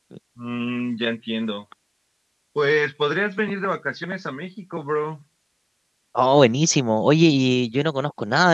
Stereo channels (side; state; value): both; identical; correlation 1.00